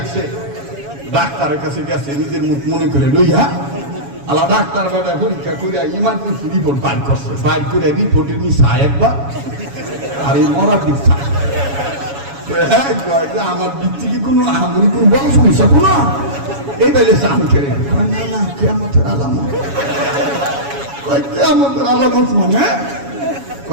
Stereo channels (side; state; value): left; late; 7.2 ms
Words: ডাক্তারের কাছে গেছে নিজের মুখ মনে করে লইয়া, আলা ডাক্তার বেটা পরীক্ষা করে ইমার্জেন্সি রিপোর্ট বাইর করছে, বাইর করে রিপোর্টের নিচা একবার আর এই মরার দিক আমার দিক থেকে কোনো আমি কোনো বড় সমস্যা কোনো এই বেলে চান করে না না কেয়ামতের আলামত, কেয়ামতের আলামত মানে